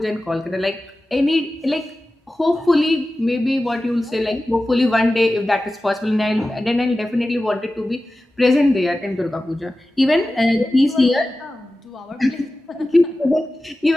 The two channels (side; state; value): both; normal; correlation 0.95